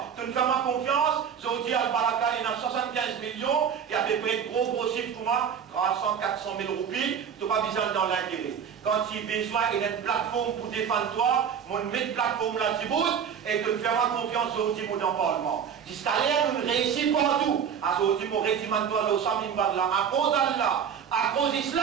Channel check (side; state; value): left; quieter; 7.7 dB